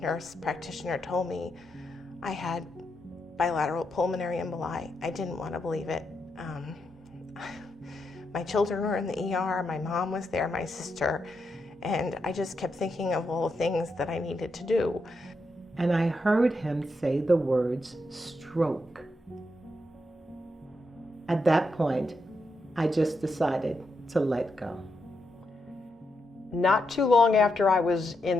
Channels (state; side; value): normal; both; correlation 0.83